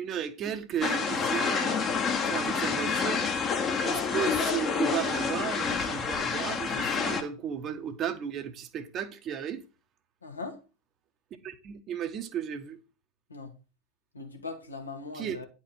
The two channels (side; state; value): both; normal; correlation 0.48